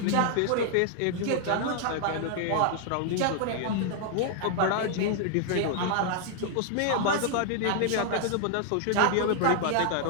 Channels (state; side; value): different; both; correlation 0.00